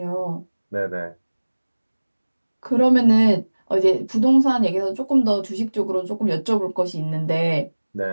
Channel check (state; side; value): inverted; both; correlation -1.00